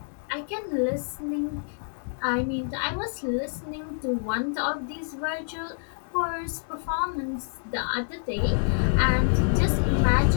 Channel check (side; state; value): right; silent; digital silence